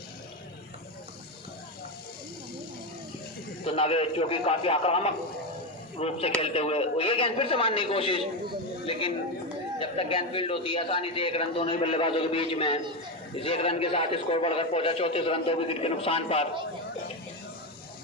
तो नवेद जो कि काफी आक्रामक रूप से खेलते हुए, और ये गेंद फिर से मारने की कोशिश, लेकिन जब तक गेंद फील्ड होती है आसानी से 1 रन दोनों ही बल्लेबाजों के बीच में। इस 1 रन के साथ स्कोर बढ़कर पहुंचा 34 रन, 2 विकेट के नुकसान पर।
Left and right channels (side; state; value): both; normal; correlation 0.12